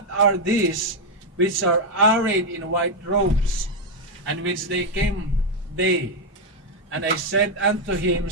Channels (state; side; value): normal; both; correlation 0.02